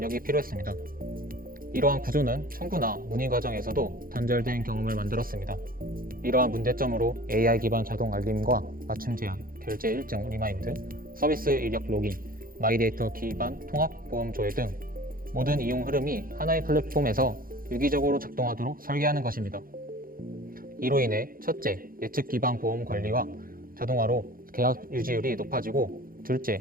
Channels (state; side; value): late; left; 0.42 ms